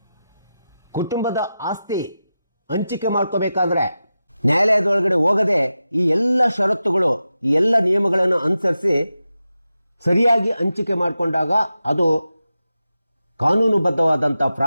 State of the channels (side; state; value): both; inverted; correlation -0.92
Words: ಕುಟುಂಬದ ಆಸ್ತಿ ಹಂಚಿಕೆ ಮಾಡ್ಕೋಬೇಕಾದ್ರೆ ನ್ಯಾಯಾಲಯದೊಳಗಡೆ ಹೋಗದೆ ಈ ಎಲ್ಲ ಷರತ್ತುಗಳು, ಈ ಎಲ್ಲ ನಿಯಮಗಳನ್ನು ಅನುಸರಿಸಿ ಸರಿಯಾಗಿ ಹಂಚಿಕೆ ಮಾಡಿಕೊಂಡಾಗ ಅದು ಕಾನೂನುಬದ್ಧವಾದಂಥ